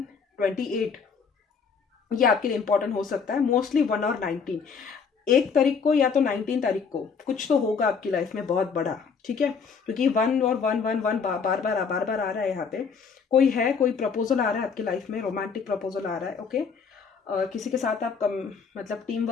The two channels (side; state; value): right; quieter; 5.9 dB